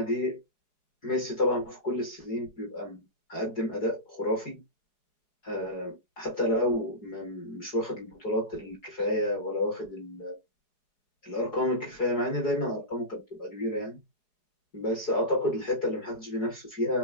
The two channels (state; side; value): late; right; 4.7 ms